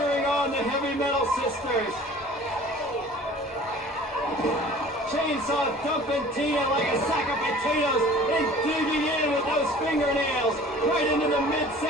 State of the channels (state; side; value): normal; both; correlation 0.47